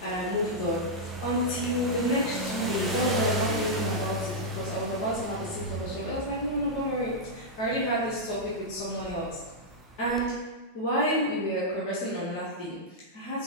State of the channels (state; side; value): normal; both; correlation -0.06